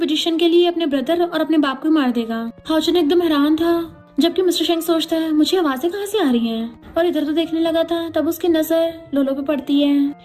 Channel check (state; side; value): identical; both; correlation 1.00